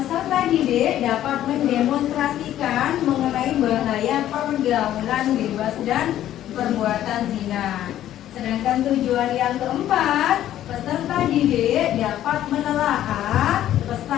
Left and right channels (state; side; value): quieter; right; 12.3 dB